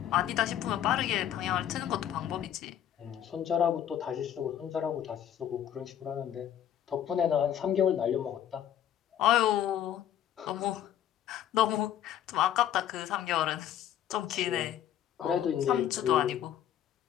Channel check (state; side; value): quieter; right; 10.5 dB